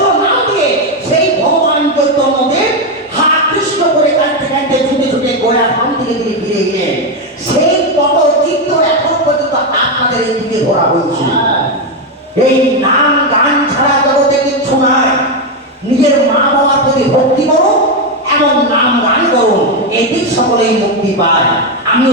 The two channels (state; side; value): normal; both; correlation 0.07